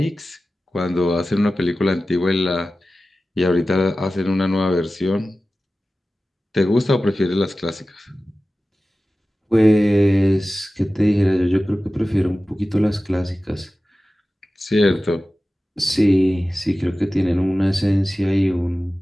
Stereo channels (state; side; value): normal; both; correlation 0.95